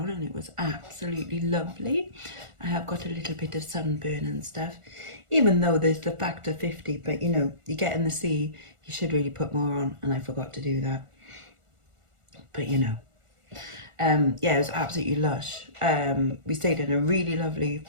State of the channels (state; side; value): late; left; 1.4 ms